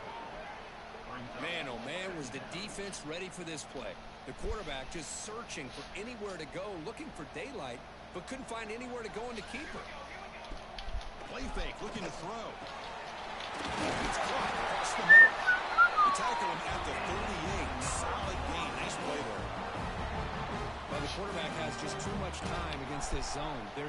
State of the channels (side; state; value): both; identical; correlation 1.00